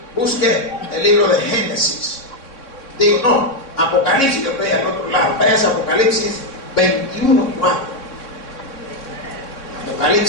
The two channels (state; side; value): late; right; 3.6 ms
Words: Busque el libro de Génesis. Digo, no, Apocalipsis, yo estoy al otro lado. Vaya a Apocalipsis 21:4.